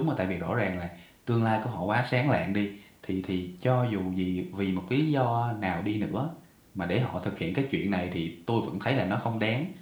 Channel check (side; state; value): both; identical; correlation 1.00